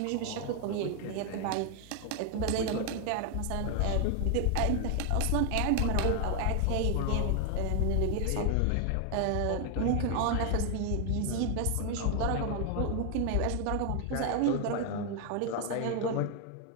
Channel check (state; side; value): different; both; correlation 0.00